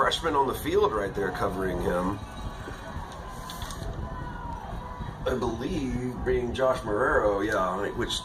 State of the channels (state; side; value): identical; both; correlation 1.00